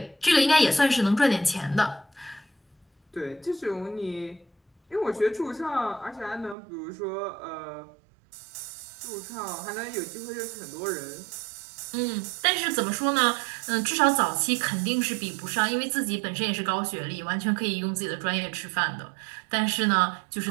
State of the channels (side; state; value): left; drops out; at 6.6 s